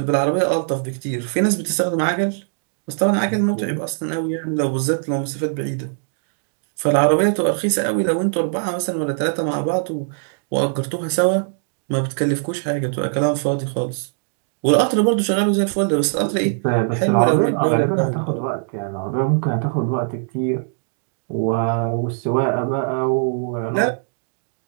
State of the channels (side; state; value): left; silent; digital silence